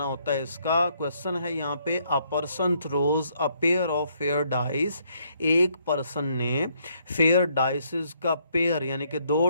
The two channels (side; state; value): both; inverted; correlation -0.71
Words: होता है। इसका क्वेश्चन है यहाँ पे, a person throws a pair of fair dice, एक पर्सन ने फेयर डाइसेस का पेयर यानी कि 2